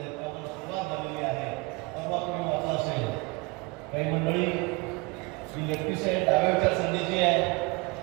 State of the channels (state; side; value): quieter; left; 26.6 dB